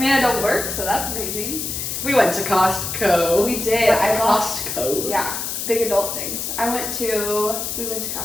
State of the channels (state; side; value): noise; left; hiss, 4 dB below the sound